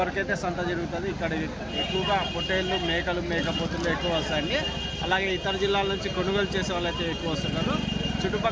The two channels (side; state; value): both; identical; correlation 1.00